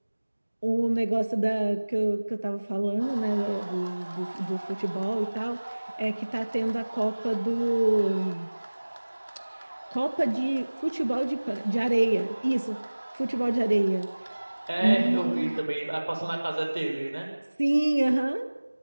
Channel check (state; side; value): inverted; both; correlation -1.00